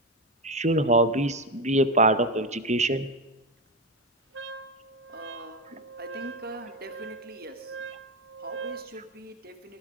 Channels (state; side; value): normal; both; correlation 0.13